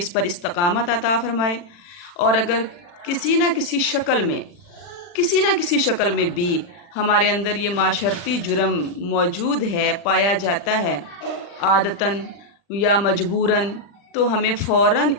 پر استقامت عطا فرمائے، اور اگر کسی نہ کسی شکل میں بھی ہمارے اندر یہ معاشرتی جرم موجود ہے، پایا جاتا ہے عادتاً یا مجبوراً، تو ہمیں فوراً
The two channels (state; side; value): late; right; 40 ms